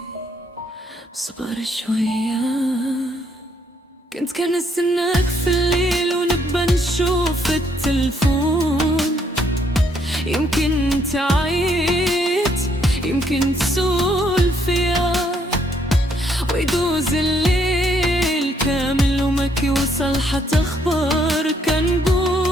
صبر شوية، كنت كنستناك في الليل ونبقى نشوف التلفون. يمكن تعيط، يمكن تسول فيا، ويدوز الليل كامل وما كيوصل حتى اخبار. كنقول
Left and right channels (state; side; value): normal; both; correlation 0.70